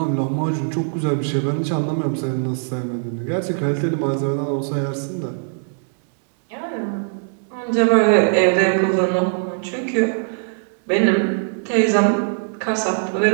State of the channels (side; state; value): left; silent; digital silence